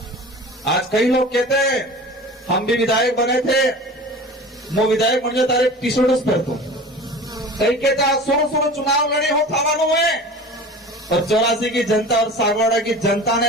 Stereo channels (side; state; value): both; normal; correlation 0.38